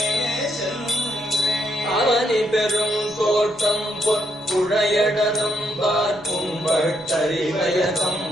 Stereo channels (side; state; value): both; normal; correlation 0.76